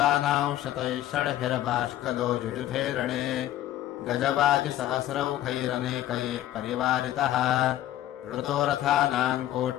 शतैः षड्भिर्बाष्कलो युयुधे रणे गजवाजिसहस्रौघैरनेकैः परिवारितः ऋतो रथानाम्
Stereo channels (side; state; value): right; quieter; 13.4 dB